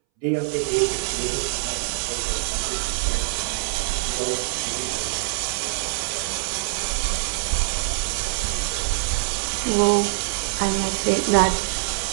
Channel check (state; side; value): silent; left; 63 dB below the other